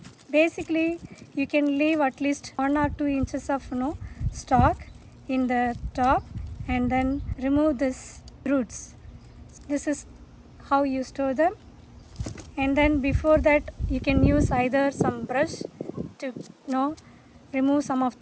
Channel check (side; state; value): both; identical; correlation 1.00